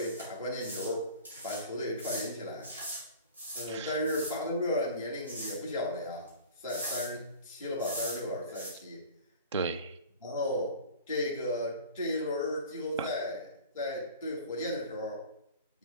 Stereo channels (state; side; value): inverted; both; correlation -0.40